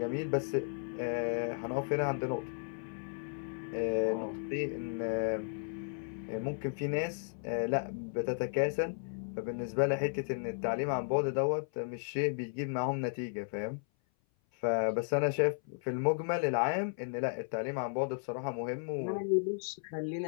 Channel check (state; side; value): silent; right; 55 dB below the other